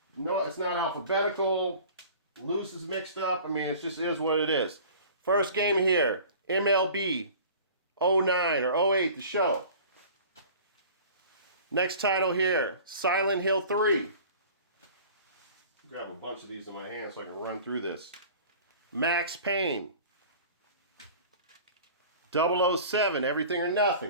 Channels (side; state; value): both; inverted; correlation -0.43